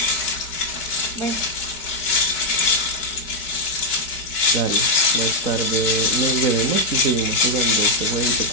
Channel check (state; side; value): late; right; 4.6 ms